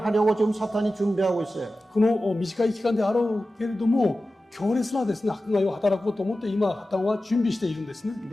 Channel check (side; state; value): both; normal; correlation 0.94